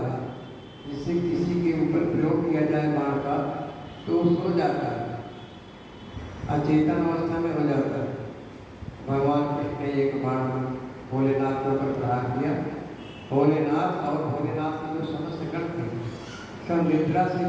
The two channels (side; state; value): both; identical; correlation 1.00